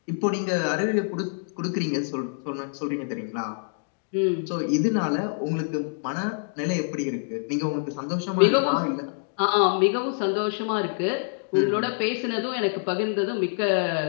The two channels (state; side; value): silent; right; digital silence